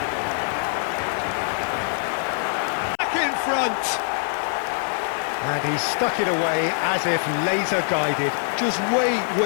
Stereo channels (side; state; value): right; silent; 63 dB below the other